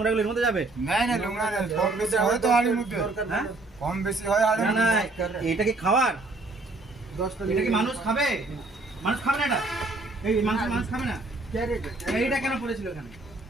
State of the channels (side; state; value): left; quieter; 3.1 dB